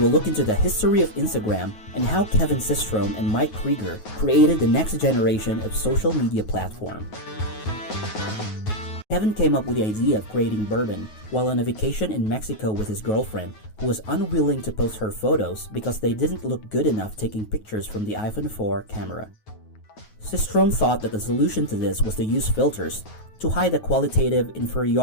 look into the history of Instagram and how Kevin Systrom and Mike Krieger created the next generation of social media platform. Kevin came up with the idea of creating Bourbon while on a vacation in Mexico with his girlfriend, who was unwilling to post her photos because they didn't look good enough taking pictures from the iPhone 4 camera. Systrom thought that the solution to this was to use filters to hide the qualitative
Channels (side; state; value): right; late; 9.4 ms